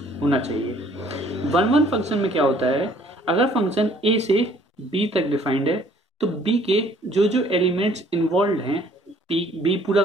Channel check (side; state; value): both; normal; correlation 0.59